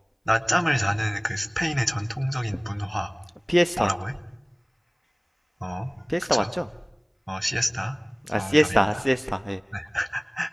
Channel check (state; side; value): identical; both; correlation 1.00